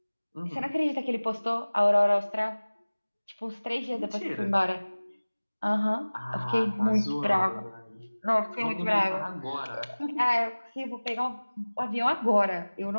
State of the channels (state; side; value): inverted; both; correlation -1.00